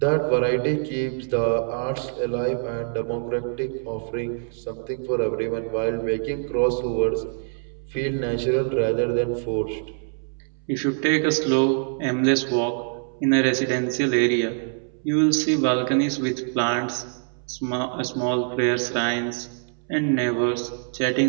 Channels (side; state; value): left; silent; 62 dB below the other